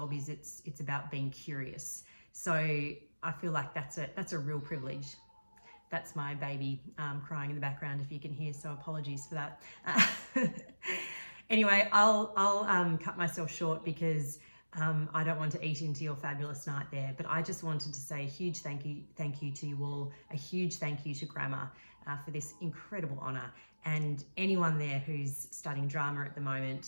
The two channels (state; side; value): inverted; both; correlation -1.00